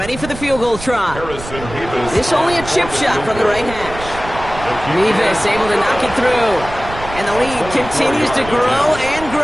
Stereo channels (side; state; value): right; noise; rumble, 12 dB below the sound